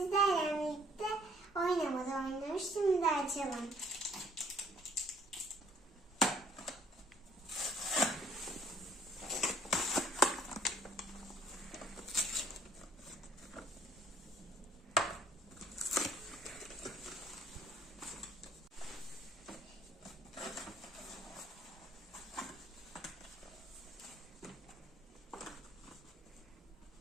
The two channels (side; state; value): both; normal; correlation 0.60